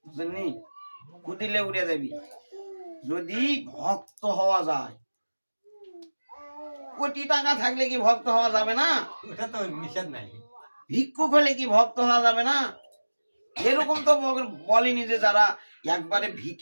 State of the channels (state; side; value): inverted; both; correlation -1.00